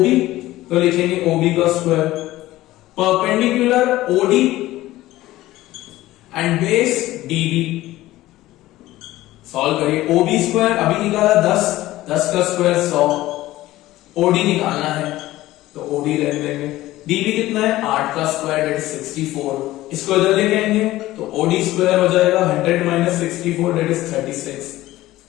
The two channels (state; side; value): quieter; right; 16.4 dB